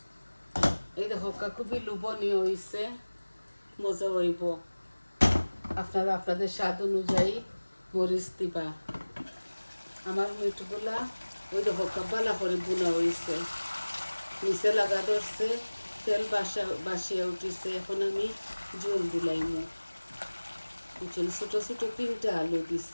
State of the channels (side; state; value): both; inverted; correlation -1.00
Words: এই দেখো খুবই লোভনীয় হয়েছে মজা হইব আপনারা আপনাদের স্বাদ অনুযায়ী মরিচ দিবা আমার মিটগুলা ওই দেখো বালা করে বোনা হয়েছে নিচে লাগা ধরছে তেল বাসিয়া উঠিছে এখন আমি জল দিলাইমু বুঝছেন ছোট ছোট 3টা আলু